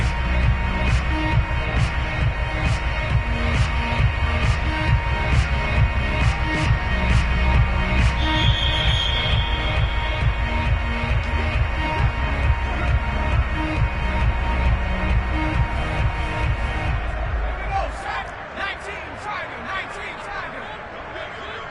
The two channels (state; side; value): identical; both; correlation 1.00